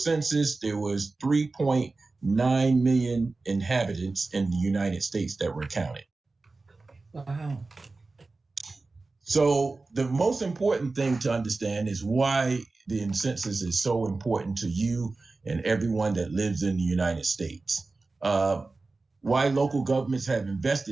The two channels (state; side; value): quieter; left; 3.6 dB